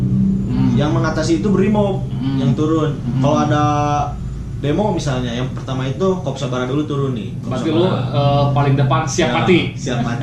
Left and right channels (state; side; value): identical; both; correlation 1.00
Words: yang mengatasi itu brimob yang turun. Kalau ada demo misalnya, yang pertama itu Korps Sabara dulu turun nih. Korps Berarti lu Sabara. paling depan siap Ya, mati. Siap